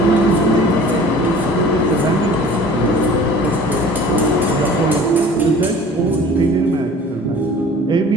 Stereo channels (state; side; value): normal; both; correlation 0.46